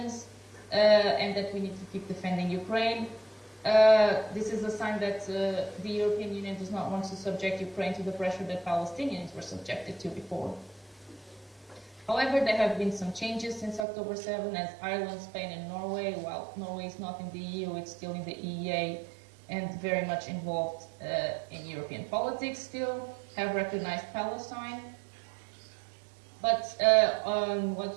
and that we need to keep defending Ukraine. This is a sign that the European Union does not want to subject Ukraine to the pressure that Palestinians were subjected to before. However, there have been some changes since October 7, as Ireland, Spain, and Norway, while Norway is not in the EU, it's still in the EEA and very much involved in European politics still, have recognized Palestine. But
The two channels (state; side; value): drops out; left; at 13.9 s